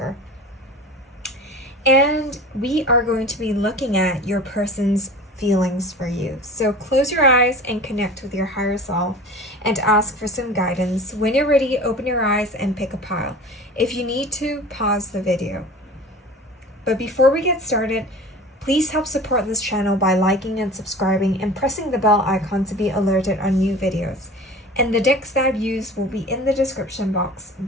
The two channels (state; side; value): normal; both; correlation 0.38